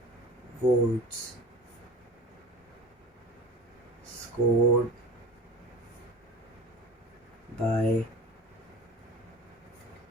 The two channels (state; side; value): normal; both; correlation 0.36